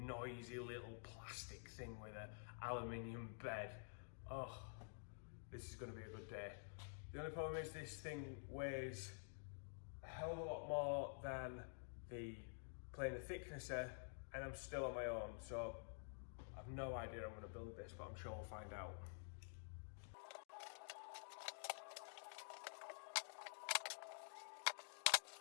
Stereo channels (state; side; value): silent; right; digital silence